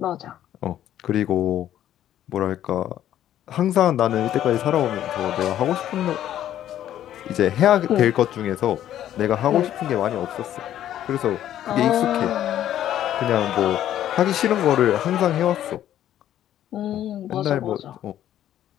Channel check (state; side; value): quieter; right; 11.7 dB